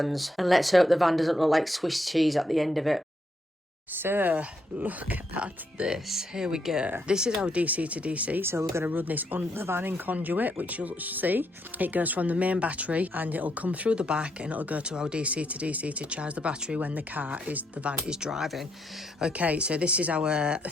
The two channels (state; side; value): normal; both; correlation 0.76